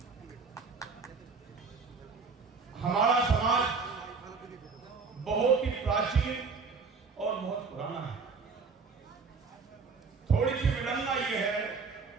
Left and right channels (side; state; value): left; quieter; 4.8 dB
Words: हमारा समाज बहुत ही प्राचीन और बहुत पुराना है। थोड़ी सी विडंबना ये है,